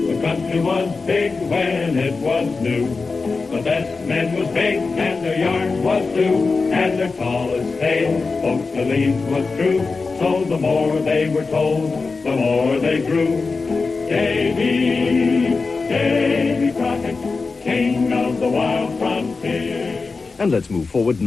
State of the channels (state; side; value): quieter; right; 4.2 dB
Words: country was big when it was new. The best men was big and their yarn was blue, and their tallest tale folks believed was true. So the more they were told, the more they grew. Davy Crockett, king of the wild frontier. And let's move forward